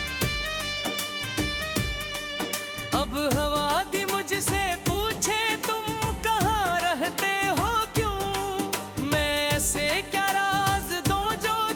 अब हवा दी मुझसे पूछे तुम कहाँ रहते हो क्यों मैं ऐसे क्या राज दूं जो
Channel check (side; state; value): both; identical; correlation 1.00